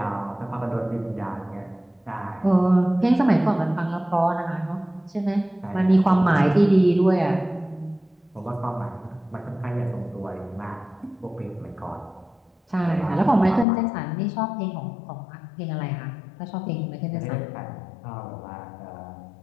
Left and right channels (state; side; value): drops out; right; at 13.7 s